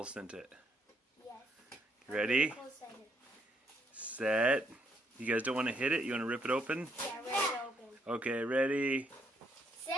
sent it. Yes. Ready? Nicole sent it. Set. You guys don't want to hit it? You want to rip it open? Yeah, ready to open. Okay, ready, Say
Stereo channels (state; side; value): normal; both; correlation 0.72